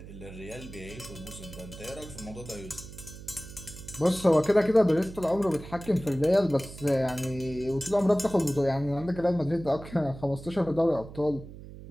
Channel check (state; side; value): noise; right; hum, 14 dB below the sound